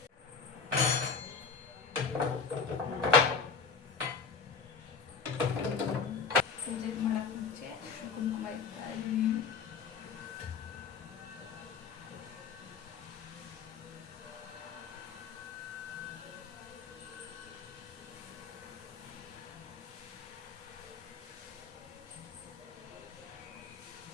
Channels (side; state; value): right; quieter; 5.3 dB